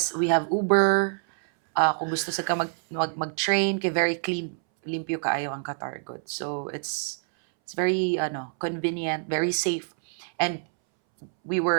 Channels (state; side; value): silent; left; 61 dB below the other